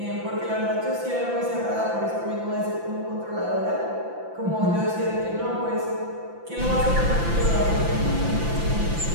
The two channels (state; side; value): late; left; 5.9 ms